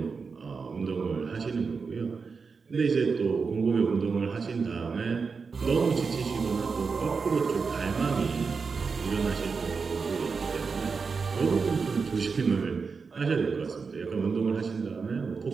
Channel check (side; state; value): left; quieter; 5.0 dB